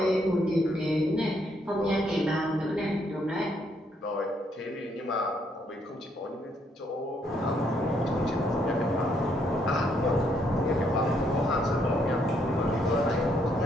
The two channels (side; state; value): both; normal; correlation 0.72